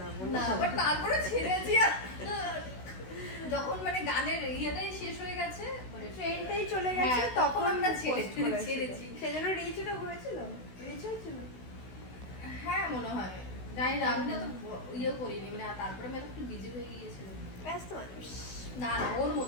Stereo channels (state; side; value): late; right; 16 ms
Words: না, না। বাট তারপরে ছেড়েছি। যখন মানে গানের ইয়েটাই শেষ হয়ে গেছে, মানে ট্রেনটাই চলে গেছে, হ্যাঁ, তখন আমরা আমরা ছেড়েছি। সেজন্য রিচটা হয়েছিল, রিচ হয়েছিল। হ্যাঁ মনে হয়, জানি না, আমি না তো ইয়ে করিনি, মানে তারপরে আমি একটু বিজি হয়ে গিয়েছিলাম। ব্যস্ত মানুষ। না না, ওর